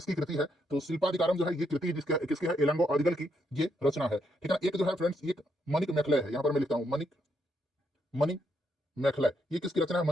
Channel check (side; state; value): both; normal; correlation 0.77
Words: कृति है। तो शिल्पाधिकारम जो है ये कृति किसकी है, इलांगो अदिगल की ये रचना है, ठीक है ना। एक जो है फ्रेंड्स एक मणिक मेखले है, यहाँ पर मैं लिखता हूँ मणिक मेखले, ये किसकी रचना है,